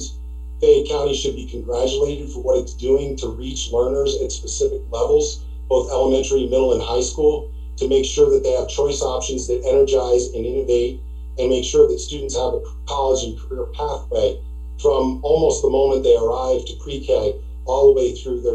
Fayette County should be congratulated for what it's doing to reach learners at specific levels, both elementary, middle, and high school, to make sure that they have choice options that energize and innovate and make sure that students have a college and career pathway from almost the moment they arrive to pre-K all the way through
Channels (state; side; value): identical; both; correlation 1.00